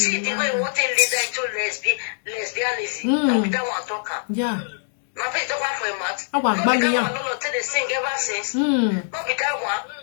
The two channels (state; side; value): silent; right; digital silence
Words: the way what they lead into lesbianism. Not with that one talker. Yeah. My face don't want for a mat. I want baby. Not with that one. They sing ever since. Not with that one.